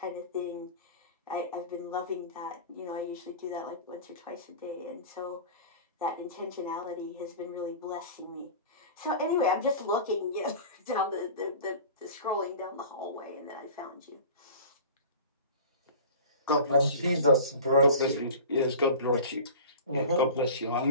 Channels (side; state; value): both; inverted; correlation -0.37